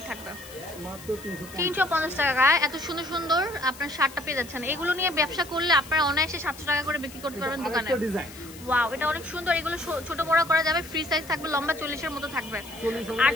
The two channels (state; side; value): noise; left; hiss, 18 dB below the sound